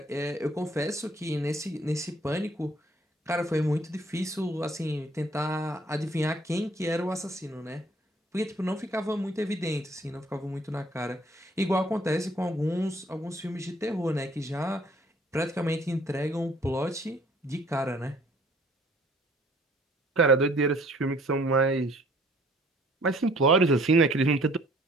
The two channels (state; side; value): normal; both; correlation 0.58